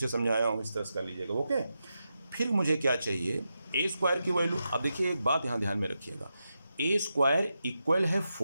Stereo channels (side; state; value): both; inverted; correlation -0.88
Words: समझाया हूँ, इस तरह से कर लीजिएगा। ओके, फिर मुझे क्या चाहिए? A² की वैल्यू। अब देखिए एक बात यहाँ ध्यान में रखिएगा, A² इक्वल है